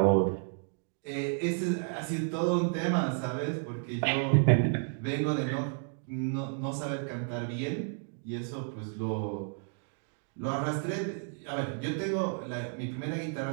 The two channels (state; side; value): silent; left; 57 dB below the other